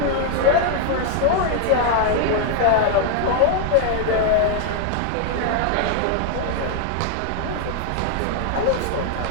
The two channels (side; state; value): both; different; correlation 0.00